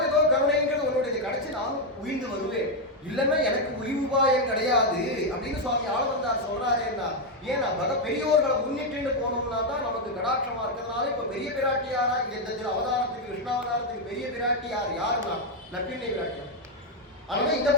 ஏதோ கருணைங்கிறது உன்னுடைய கிடைச்சி நானும் உயிர்ந்து வருவேன். இல்லைன்னா எனக்கு உயிர்வாயம் கிடையாது அப்படின்னு சுவாமி ஆளவந்தார் சொல்றாருன்னா. ஏன்னா பெரியோர்களை முன்னிட்டு போனோம்னா தான் நமக்கு கடாட்சமா இருக்கிறதுனால இப்ப பெரிய பிராட்டியாரா இந்த அவதாரத்துக்கு கிருஷ்ணாவதாரத்துக்கு பெரிய பிராட்டியார் யாருன்னா நப்பிண்ணை பிராட்டியார். அதனால இந்த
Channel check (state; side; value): normal; both; correlation 0.02